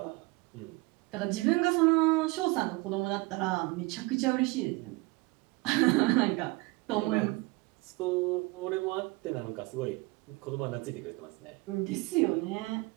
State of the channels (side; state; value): left; quieter; 24.1 dB